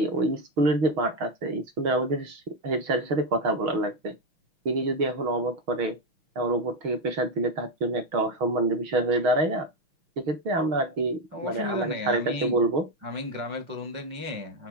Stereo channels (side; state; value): left; late; 6.3 ms